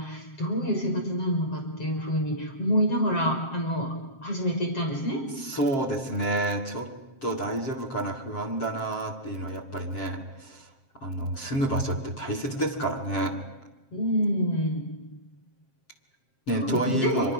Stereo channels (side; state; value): right; late; 7.5 ms